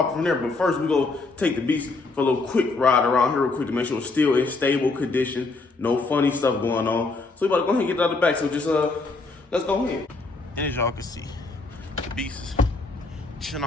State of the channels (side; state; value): right; quieter; 3.6 dB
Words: from there. But first, we go take the beast for a little quick ride around here real quick to make sure it's still in stable condition, no funny stuff going on. So we about to go ahead and get it out of the back. So just let's go ahead. As y'all can see, the beast is chilling